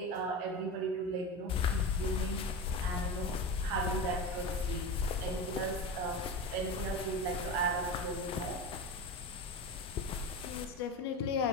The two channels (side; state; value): both; normal; correlation 0.25